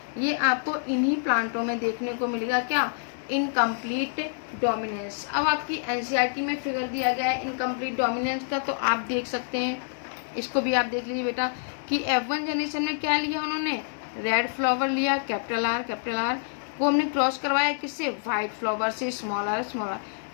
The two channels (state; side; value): silent; right; digital silence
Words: ये आपको इन्हीं प्लांटों में देखने को मिलेगा, क्या, इनकम्प्लीट डोमिनेंस। अब आपकी एनसीईआरटी में फिगर दिया गया है इनकम्प्लीट डोमिनेंस का, तो आप देख सकते हैं, इसको भी आप देख लीजिए बेटा कि F1 जनरेशन में क्या लिया उन्होंने, रेड फ्लावर लिया, कैपिटल आर को हमने क्रॉस करवाया किससे, वाइट फ्लावर से, स्मॉल आर।